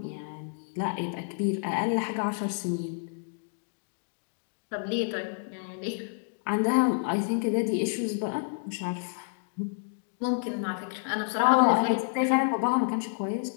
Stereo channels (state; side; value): silent; right; digital silence